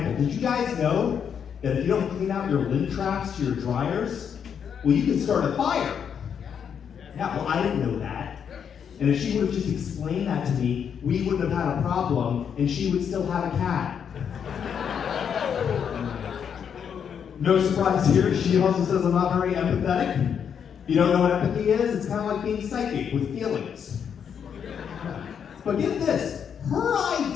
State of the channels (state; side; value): quieter; right; 7.7 dB